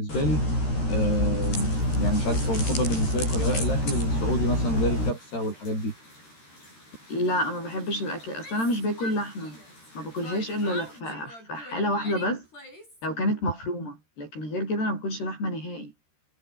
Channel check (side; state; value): right; late; 13 ms